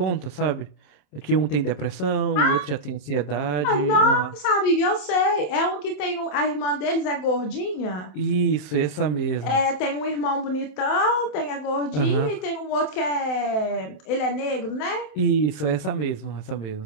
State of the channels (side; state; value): right; late; 27 ms